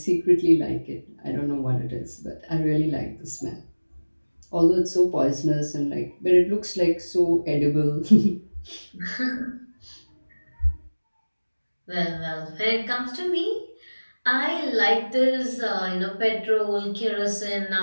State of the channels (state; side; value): inverted; both; correlation -1.00